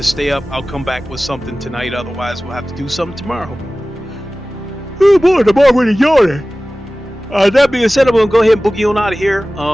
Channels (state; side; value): normal; both; correlation 0.97